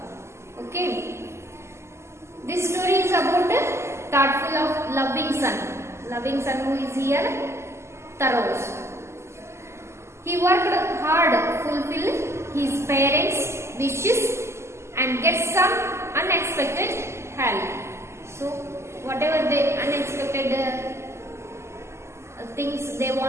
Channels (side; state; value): left; late; 0.13 ms